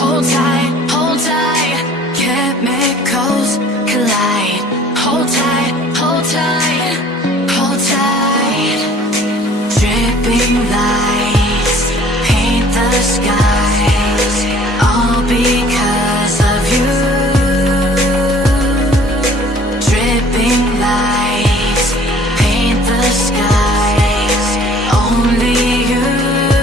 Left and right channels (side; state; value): both; normal; correlation 0.53